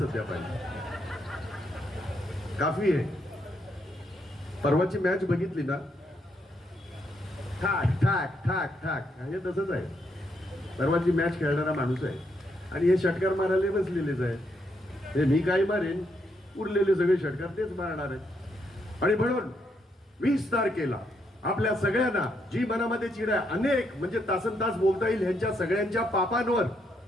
पाहिजे, काफी आहे. परवाची मॅच बघितली ना, ठाक ठाक ठाक ठाक हे तसंच आहे. परवाची मॅच खेळणारा माणूस आहे आणि हे षटकार मारायला बसलेलेच आहे. हे मी काही मारेन, उरलेले सगळे षटकार तेच मारणार आहेत. आणि म्हणून 20 तारखेला आपल्या सगळ्यांना जी मनामध्ये चीड आहे, अनेक म्हणजे तासन तास बोलता येईल ह्यांच्या सगळ्यांच्या पापांवर,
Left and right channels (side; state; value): both; normal; correlation 0.77